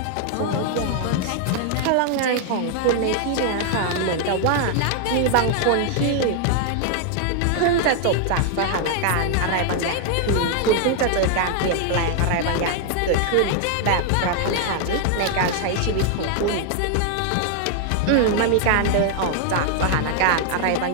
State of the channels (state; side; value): different; both; correlation 0.00